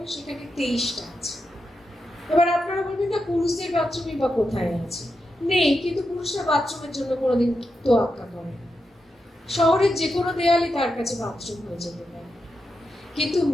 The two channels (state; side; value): normal; both; correlation 0.87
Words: সেখানে 23টা আছে। এবার আপনারা বলবেন না পুরুষদের বাথরুমই বা কোথায় আছে? নেই, কিন্তু পুরুষরা বাথরুমের জন্য কোনোদিন তোয়াক্কা করে না। শহরের যে কোনো দেয়ালই তার কাছে বাথরুম হয়ে যেতে পারে, কিন্তু